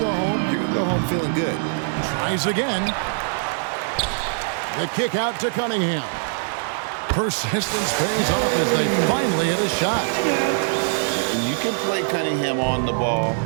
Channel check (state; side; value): silent; left; digital silence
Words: home, you're going to go home feeling good. Tries again. The kick out to Cunningham. Persistence pays off as they finally hit a shot. And you can play Cunningham on the ball,